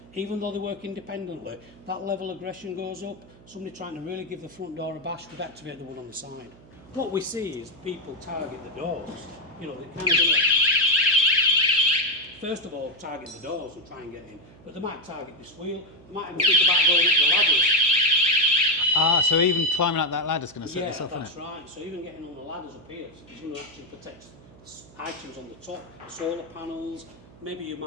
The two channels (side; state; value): right; noise; hum, 23 dB below the sound